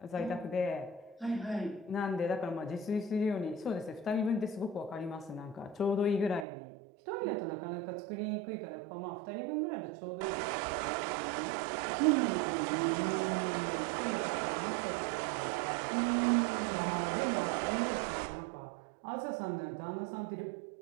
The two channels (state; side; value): drops out; left; at 6.5 s